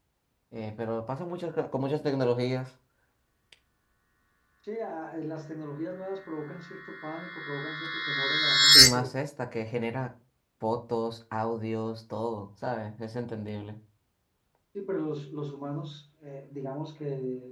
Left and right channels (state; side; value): identical; both; correlation 1.00